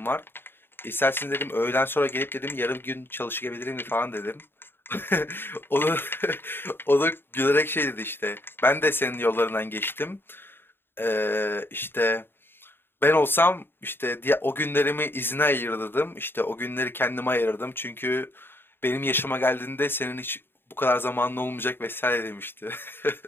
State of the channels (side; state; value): right; late; 0.10 ms